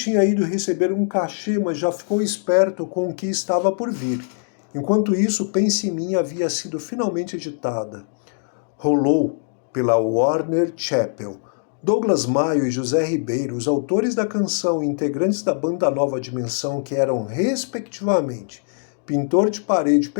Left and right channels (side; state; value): right; silent; digital silence